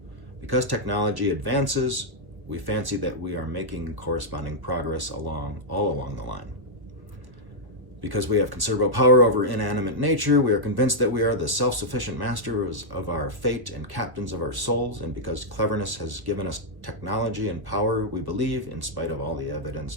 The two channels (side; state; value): left; late; 1.0 ms